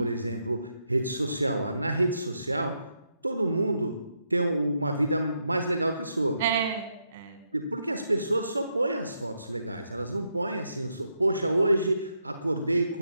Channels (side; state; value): both; inverted; correlation -0.80